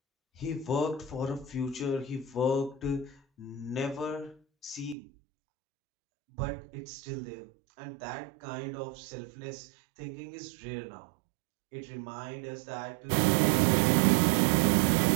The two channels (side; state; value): left; drops out; at 5.0 s